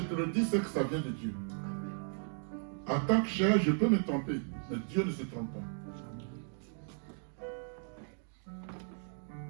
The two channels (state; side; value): silent; left; 54 dB below the other